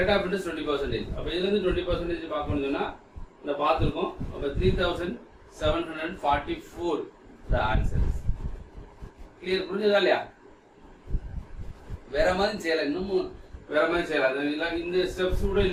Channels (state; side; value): identical; both; correlation 1.00